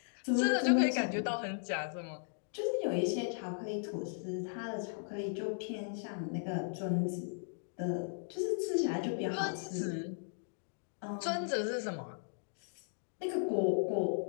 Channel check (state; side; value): silent; right; digital silence